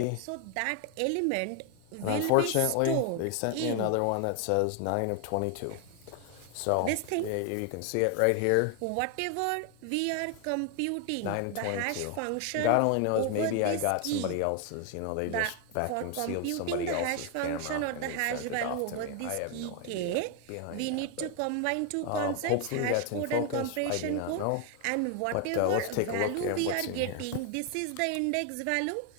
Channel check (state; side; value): different; both; correlation 0.01